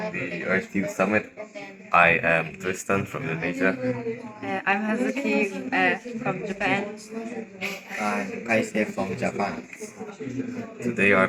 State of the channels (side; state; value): both; identical; correlation 1.00